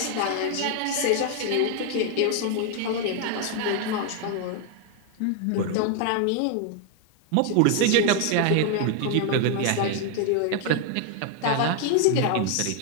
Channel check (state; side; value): different; both; correlation 0.00